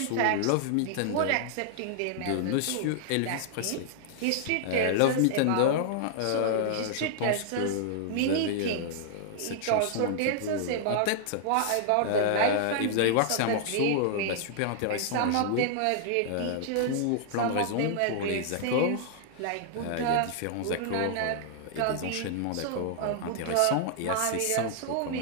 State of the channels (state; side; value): different; both; correlation -0.01